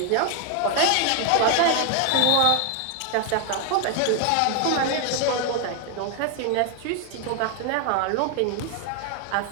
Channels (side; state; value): both; different; correlation 0.01